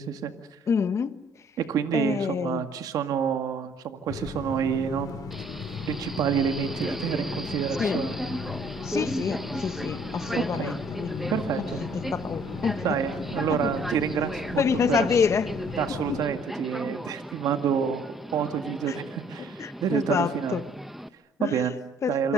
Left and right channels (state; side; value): normal; both; correlation 0.60